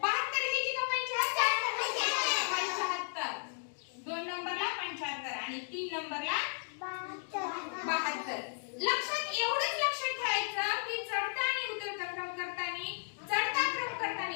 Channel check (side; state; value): right; silent; 55 dB below the other